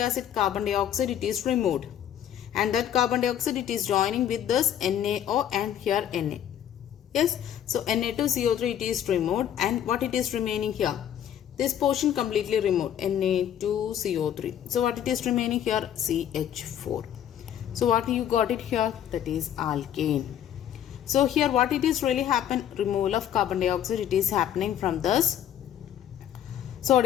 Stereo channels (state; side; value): quieter; right; 10.2 dB